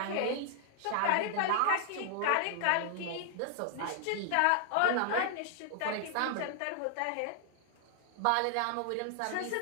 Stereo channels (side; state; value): both; different; correlation 0.00